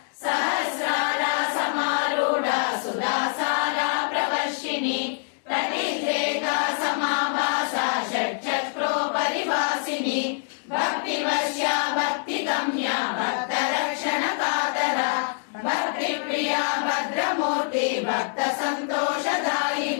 सहस्रारा समारूढा सुधासारा प्रवर्षिणी तटिद्रेका समाभासा षट्चक्रो परिवासिनी भक्तिवश्या भक्तिगम्या भक्तरक्षणकातरा भक्तिप्रिया भद्रमूर्ति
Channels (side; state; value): right; silent; digital silence